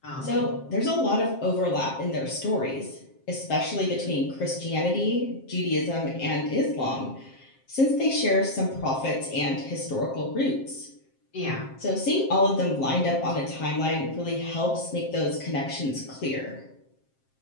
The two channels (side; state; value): right; late; 7.5 ms